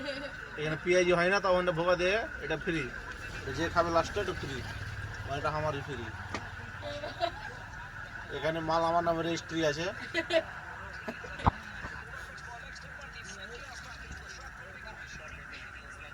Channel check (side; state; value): both; identical; correlation 1.00